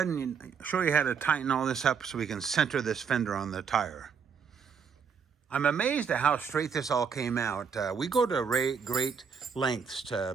and show you how to tighten all this up so we can center this fender on the tire. I'm amazed at how straight this all came out. We go to great lengths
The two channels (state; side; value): quieter; left; 6.4 dB